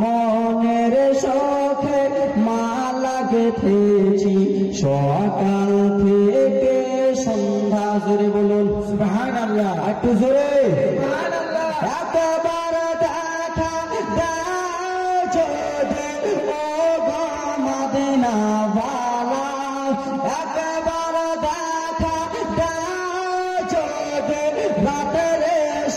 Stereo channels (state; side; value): identical; both; correlation 1.00